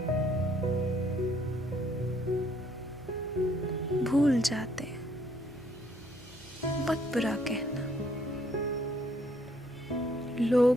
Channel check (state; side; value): normal; both; correlation 0.66